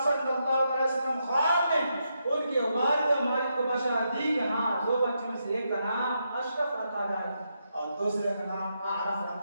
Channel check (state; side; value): inverted; both; correlation -0.82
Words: صلی اللہ علیہ وسلم خواب میں ان کے والد ماجد کو بشارت دی کہ ہاں 2 بچوں میں سے ایک کا نام اشرف رکھا جائے اور دوسرے کا نام اعرف